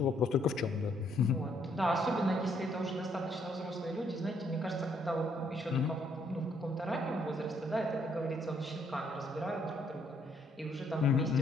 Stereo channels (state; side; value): normal; both; correlation 0.69